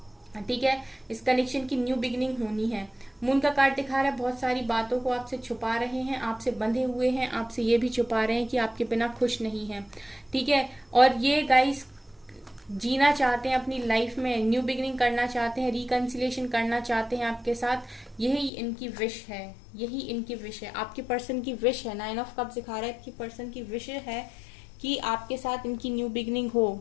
ठीक है, इस कनेक्शन की न्यू बिगिनिंग होनी है। मून का कार्ड दिखा रहा है बहुत सारी बातों को आपसे छुपा रहे हैं, आपसे बंधे हुए हैं, आपसे ये भी छुपा रहे हैं कि आपके बिना खुश नहीं है। ठीक है, और ये गाइस जीना चाहते हैं अपनी लाइफ में, न्यू बिगिनिंग करना चाहते हैं, रिकंसिलेशन करना चाहते हैं आपके साथ। यही इनकी विश है, यही इनकी विश है, आपके पर्सन की विश है। 9 ऑफ कप्स दिखा रहा है कि पर्सन की विश है कि आपके साथ इनकी न्यू बिगिनिंग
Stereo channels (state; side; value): drops out; right; at 18.5 s